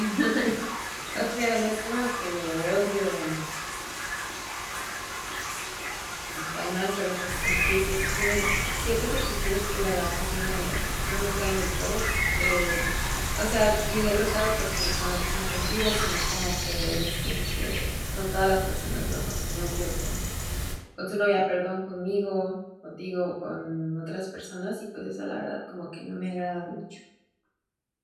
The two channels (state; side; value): identical; both; correlation 1.00